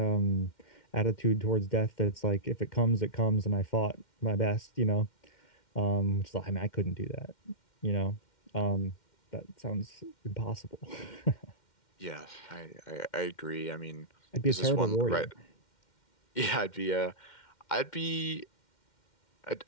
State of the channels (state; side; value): late; right; 2.1 ms